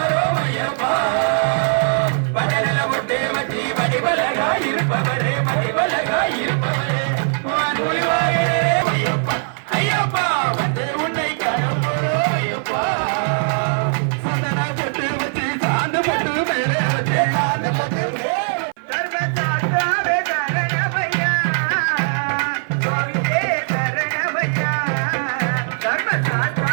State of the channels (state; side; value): silent; left; 57 dB below the other